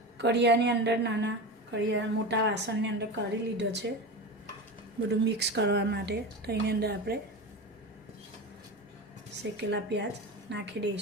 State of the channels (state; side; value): normal; both; correlation 0.25